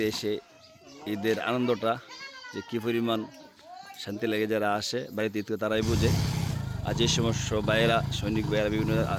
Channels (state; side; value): identical; both; correlation 1.00